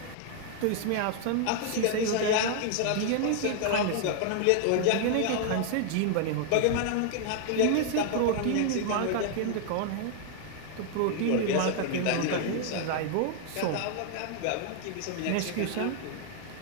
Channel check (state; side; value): different; both; correlation 0.00